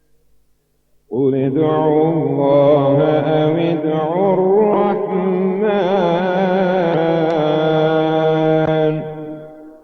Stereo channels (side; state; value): both; identical; correlation 1.00